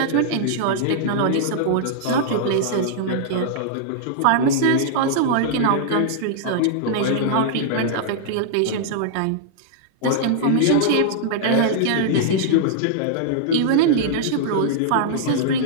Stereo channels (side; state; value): both; different; correlation -0.01